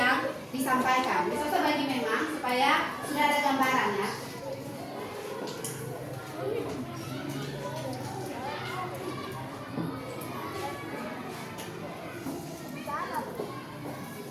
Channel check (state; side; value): identical; both; correlation 1.00